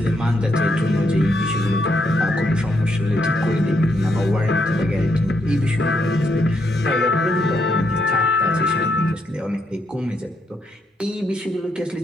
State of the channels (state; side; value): normal; both; correlation 0.77